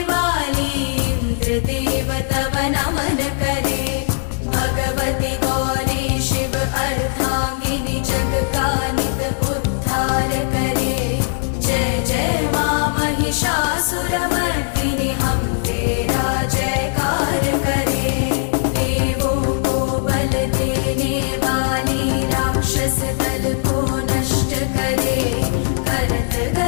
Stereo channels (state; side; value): silent; right; digital silence